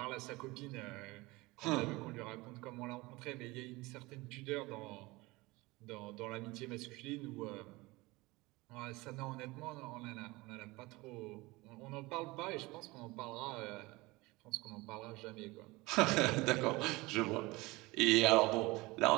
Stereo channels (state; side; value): quieter; left; 22.1 dB